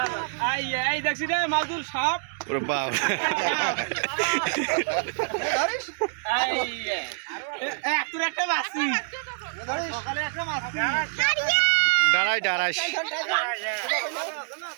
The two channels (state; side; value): silent; left; 61 dB below the other